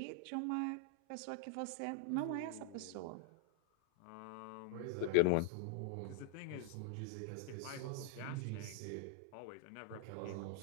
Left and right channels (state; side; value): different; both; correlation 0.00